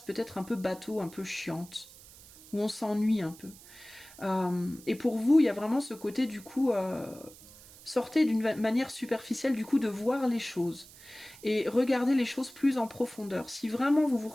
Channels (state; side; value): noise; right; hiss, 20 dB below the sound